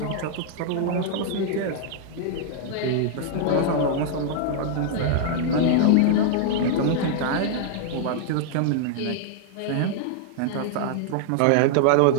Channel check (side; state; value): both; different; correlation -0.01